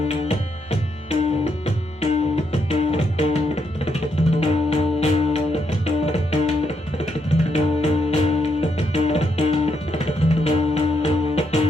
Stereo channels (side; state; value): both; normal; correlation 0.78